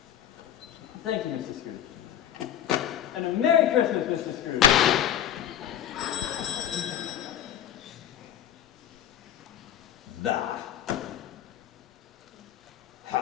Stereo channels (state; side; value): quieter; right; 10.7 dB